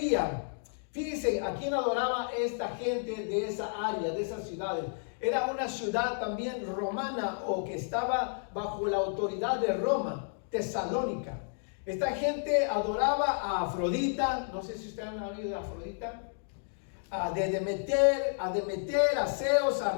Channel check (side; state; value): right; silent; digital silence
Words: Fíjense, ¿a quién adoraba esta gente de esa área, de esas ciudades? Era una ciudad también romana, o que estaba bajo la autoridad de Roma, Tesalónica. Esta gente adoraba a Afrodita, no sé si ustedes han oído de Afrodita, a Demeter, a Zeus, a